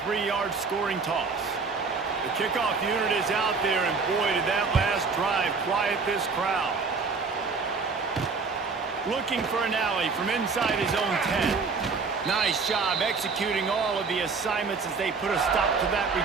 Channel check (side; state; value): left; quieter; 4.7 dB